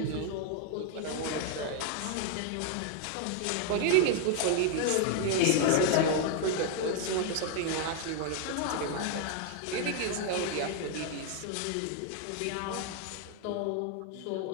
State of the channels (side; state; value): both; different; correlation 0.01